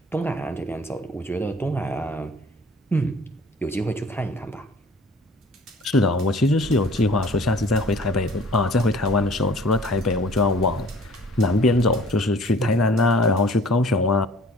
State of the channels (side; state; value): both; normal; correlation 0.51